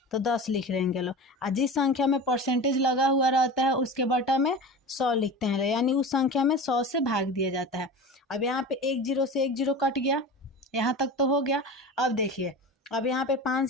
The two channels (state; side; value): normal; both; correlation 0.32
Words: तो 10 लिख लेंगे लोग। और जिस संख्या में परसेंटेज लगा हुआ रहता है उसके बटा में 100 लिखते हैं, यानी उस संख्या में 100 से भाग दिया जाता है। अब यहाँ पे 1 0 से 1 0 कट गया, यहाँ तक तो हो गया। अब देखिए, अब यहाँ पे